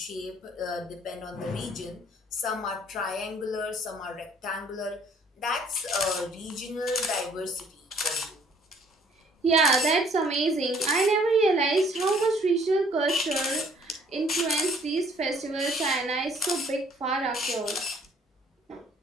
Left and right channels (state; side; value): normal; both; correlation 0.59